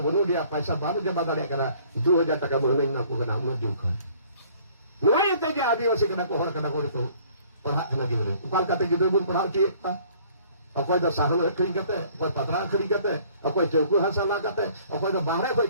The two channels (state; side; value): inverted; both; correlation -0.56